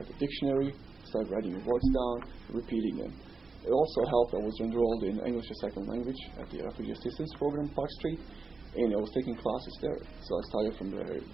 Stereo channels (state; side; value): quieter; left; 4.2 dB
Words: the dictionary, start writing the words down, repeating them. It also helped. I was enrolled in English as second language at the Refugee Assistance Program, Park Street, and I was taking classes there. So I started from the